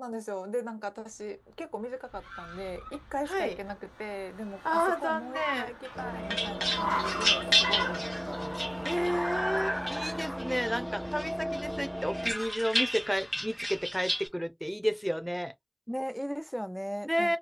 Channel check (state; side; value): identical; both; correlation 1.00